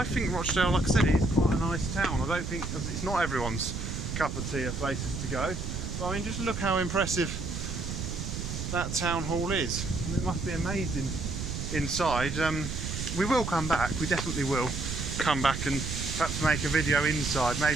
think Rochdale, like I said, is quite a nice town. I don't think it's not everyone's cup of tea of places to go, but I mean, just look how impressive that town hall is. I mean, it must be amazing inside. We will come back, we definitely will come back and perhaps make a video inside,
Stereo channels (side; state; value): right; noise; rumble, 4 dB below the sound